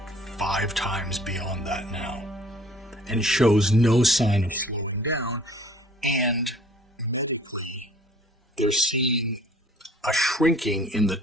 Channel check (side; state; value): both; normal; correlation 0.53